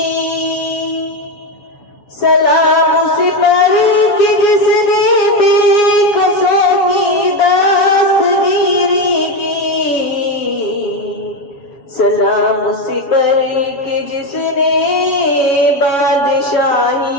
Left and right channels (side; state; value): right; late; 7.2 ms